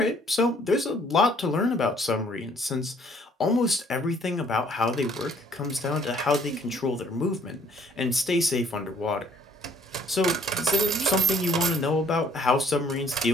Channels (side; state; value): both; normal; correlation 0.61